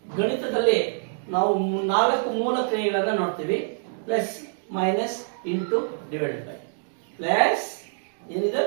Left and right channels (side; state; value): left; silent; digital silence